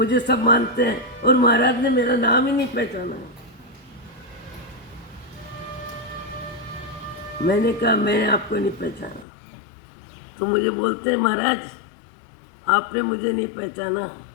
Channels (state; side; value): drops out; right; at 9.2 s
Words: सब मानते हैं, और महाराज ने मेरा नाम ही नहीं पहचाना। मैंने कहा मैंने आपको नहीं पहचाना। तो मुझे बोलते हैं महाराज आपने मुझे नहीं पहचाना।